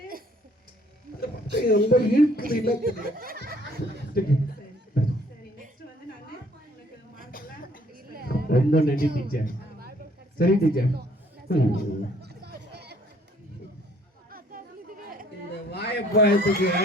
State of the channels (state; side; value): normal; both; correlation 0.61